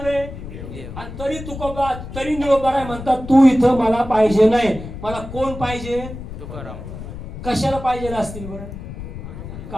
आणि तरी तुकोबा तरी निळोबाराय म्हणतात तू इथं मला पाहिजे नाही. मला कोण पाहिजे? तुकाराम. कशाला पाहिजे असतील बरं?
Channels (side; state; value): left; noise; rumble, 10 dB below the sound